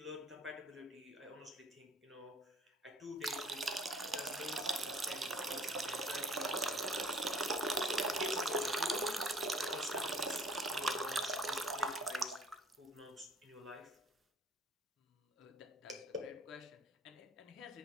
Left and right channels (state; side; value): normal; both; correlation 0.55